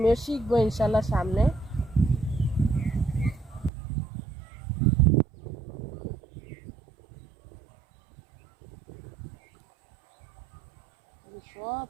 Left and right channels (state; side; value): drops out; left; at 3.7 s